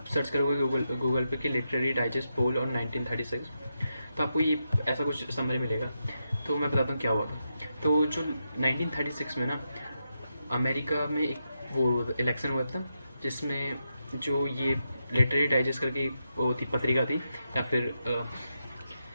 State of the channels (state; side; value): inverted; both; correlation -0.85